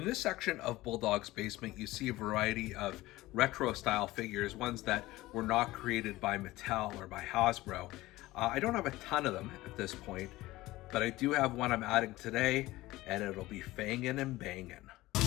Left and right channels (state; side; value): quieter; right; 18.1 dB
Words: this section of Bulldog's basement, you see a variety of retro-style figures, ones that were not created by Mattel or by Hasbro. I don't have a ton of them at this point, but I do have one I'm adding today, and it'll be fangin and bangin.